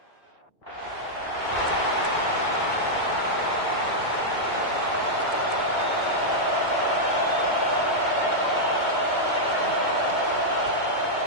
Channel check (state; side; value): late; right; 2.2 ms